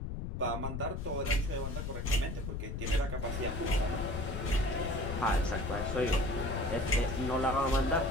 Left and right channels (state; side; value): noise; left; rumble, 4 dB below the sound